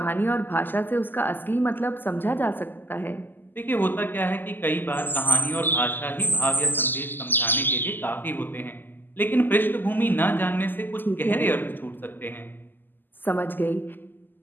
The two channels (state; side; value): late; right; 0.092 ms